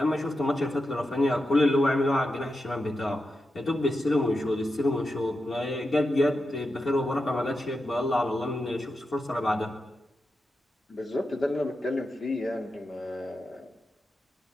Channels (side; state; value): both; normal; correlation 0.88